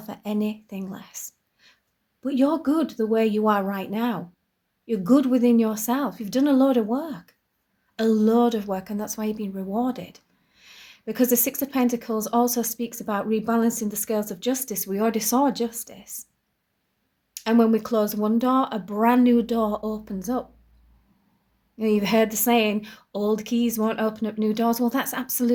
anything less. But you're good the way you are right now. You're good within yourself. You've done a load of work. A load of work, and that's why you've been rewarded. Because the Six of Pentacles also speaks about rebalancing the scales of justice. We already saw justice. And when we close one door, a brand new door opens up. You've heard the saying, old keys won't open up new doors. Well, that's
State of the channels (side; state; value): both; identical; correlation 1.00